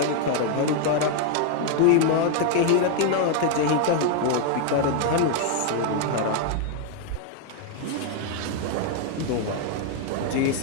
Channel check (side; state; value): both; different; correlation 0.00